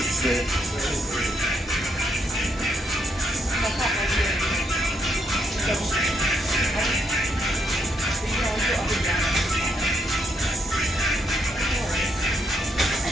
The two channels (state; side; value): normal; both; correlation 0.76